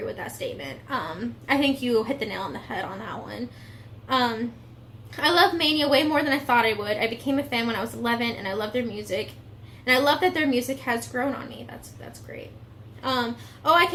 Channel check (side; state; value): both; identical; correlation 1.00